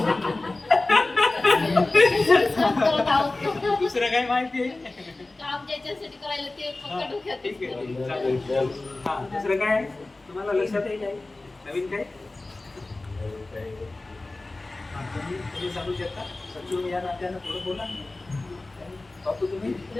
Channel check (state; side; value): quieter; right; 3.1 dB